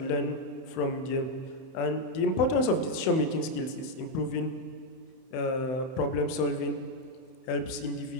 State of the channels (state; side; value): late; right; 31 ms